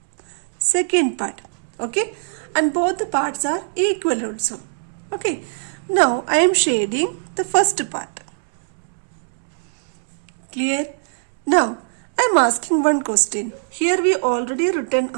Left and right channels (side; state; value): left; silent; 65 dB below the other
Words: second part. Okay. And both the parts are equal also. Okay. Now I am shading the first part. Clear? Now I am asking one question. Here we already written